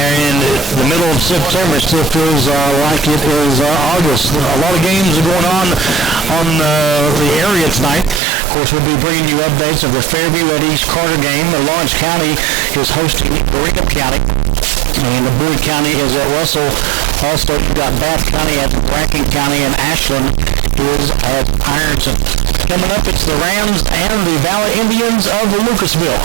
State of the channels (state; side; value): drops out; left; at 8.2 s